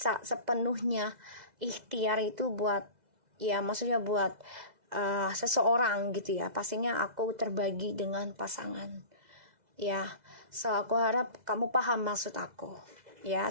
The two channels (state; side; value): late; left; 2.0 ms